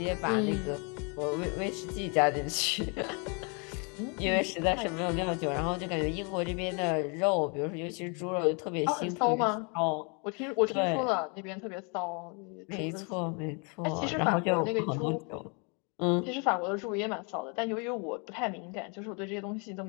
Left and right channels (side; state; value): right; quieter; 34.6 dB